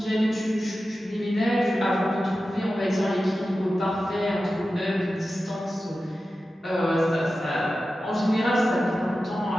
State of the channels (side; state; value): both; normal; correlation 0.93